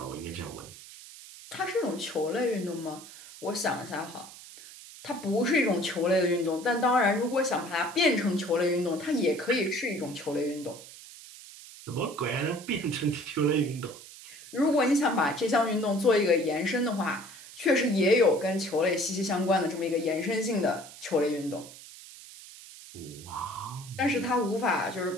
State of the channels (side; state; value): right; noise; hiss, 17 dB below the sound